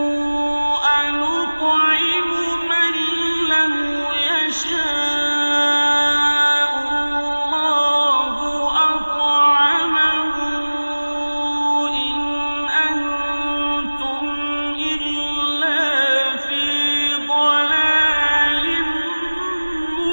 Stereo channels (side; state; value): both; inverted; correlation -1.00